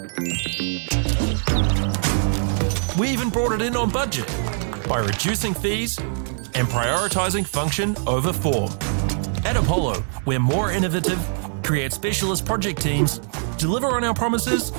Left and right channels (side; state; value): left; silent; digital silence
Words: We even brought it in on budget by reducing fees and prioritising function over form. At Apollo, we're more innovative, create specialist project teams, deliver on our promises,